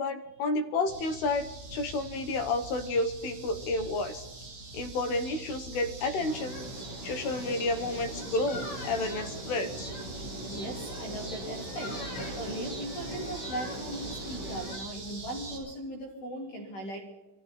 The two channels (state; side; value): late; right; 16 ms